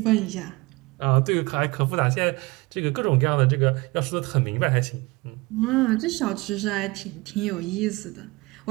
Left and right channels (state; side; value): quieter; left; 23.8 dB